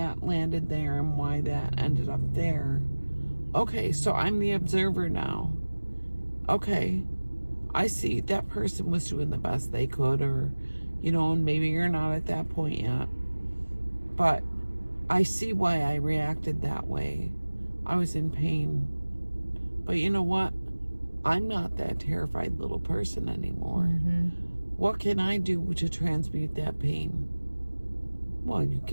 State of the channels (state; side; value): inverted; both; correlation -1.00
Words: landed there and why that ended up there. Okay, so I'm the observer now. Okay, I see that person was doing the best they could, or, and maybe you're not at that point yet. But I see why I reacted that way. I was in pain. But you know what? I'm not that terrified little person anymore. What can I do to transmute that pain? Well, you